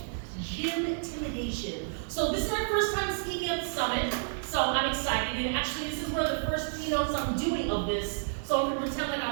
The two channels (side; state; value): left; silent; digital silence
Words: Gym intimidation. So this is my first time speaking at the summit, so I'm excited. And actually, this is one of the first keynotes I'm doing of this, so I'm gonna pretend like